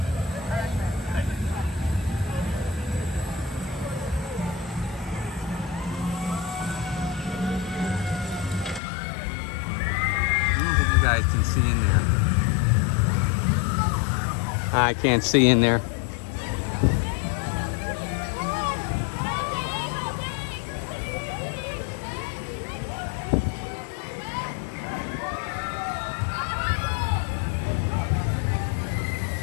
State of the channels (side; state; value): right; drops out; at 8.8 s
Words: I don't think you guys can see in there. I can't see in there.